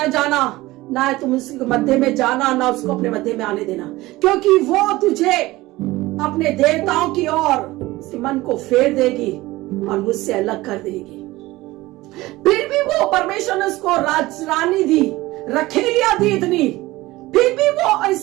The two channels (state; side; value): quieter; left; 19.0 dB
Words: जाना, ना तुम उसके मध्य में जाना, ना उसको अपने मध्य में आने देना, क्योंकि वो तुझे अपने देवताओं की ओर उसके मन को फेर देगी और मुझसे अलग कर देगी। फिर भी वो परमेश्वर ने उसको रानी दी, रखेलियां दी इतनी, फिर भी वो